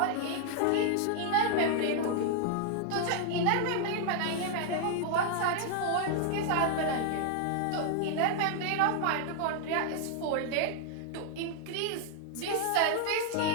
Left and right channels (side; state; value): both; different; correlation 0.00